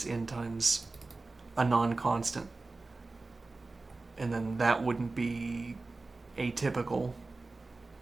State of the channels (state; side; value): quieter; left; 3.5 dB